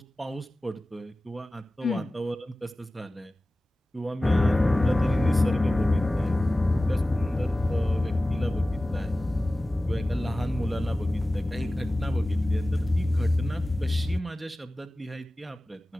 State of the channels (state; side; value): normal; both; correlation 0.97